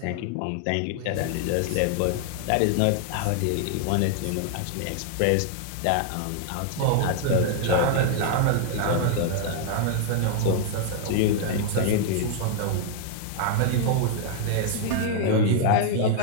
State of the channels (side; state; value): both; different; correlation 0.00